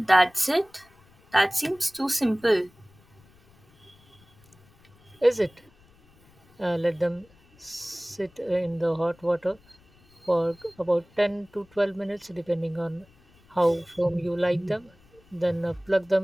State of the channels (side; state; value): left; noise; rumble, 30 dB below the sound